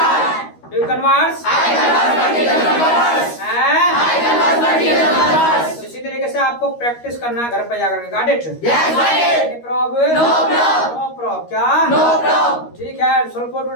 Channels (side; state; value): right; late; 13 ms